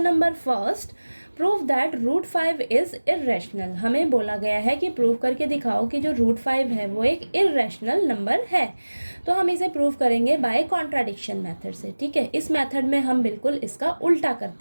number first. Prove that root 5 is irrational. हमें बोला गया है कि प्रूव करके दिखाओ कि जो रूट 5 है वो एक इर्रेशनल नंबर है। तो हम इसे प्रूव करेंगे बाय कॉन्ट्राडिक्शन मेथड से। ठीक है, इस मेथड में हम बिल्कुल इसका उल्टा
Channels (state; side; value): inverted; both; correlation -1.00